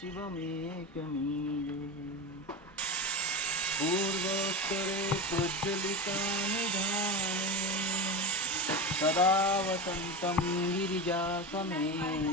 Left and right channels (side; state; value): both; normal; correlation 0.22